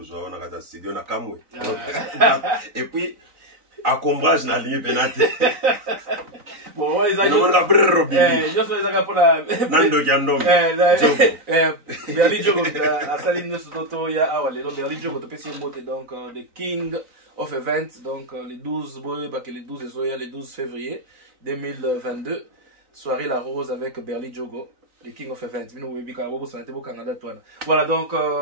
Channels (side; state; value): left; late; 3.9 ms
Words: zo na kata studio na kamwe. Et puis à combrage na ligne penate. Bon, ils ont on a brrr robi. Je fais ça pour la Nando Jandom. Berli Jogo à Saline Soto ya awale. Donc Berli Jogo to pesi mote donc the King of Events donc les 12 les 12 février 2022. Soirée La Rose avec Berli Jogo, le King of Events. Voilà donc,